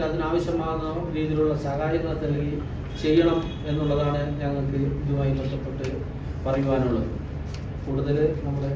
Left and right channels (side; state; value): both; identical; correlation 1.00